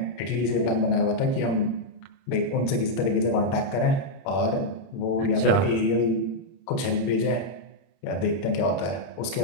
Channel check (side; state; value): right; late; 31 ms